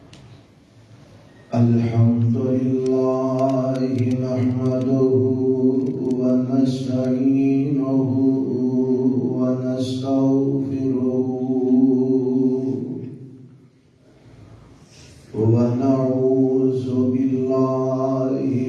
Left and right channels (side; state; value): both; identical; correlation 1.00